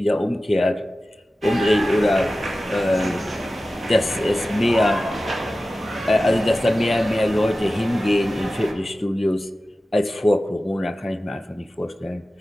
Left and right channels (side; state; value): both; normal; correlation 0.95